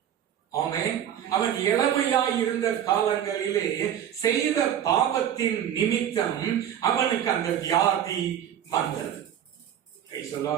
ஆமென், அவன் இளமையாய் இருந்த காலங்களிலே செய்த பாவத்தின் நிமித்தம் அவனுக்கு அந்த வியாதி வந்தது. Praise the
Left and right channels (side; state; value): left; quieter; 10.0 dB